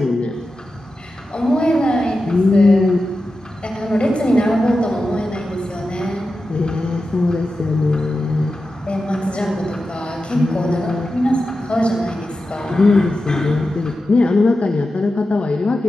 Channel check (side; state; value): both; normal; correlation 0.91